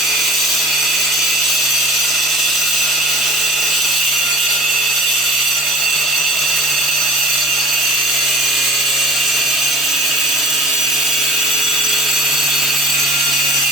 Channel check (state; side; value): normal; both; correlation 0.40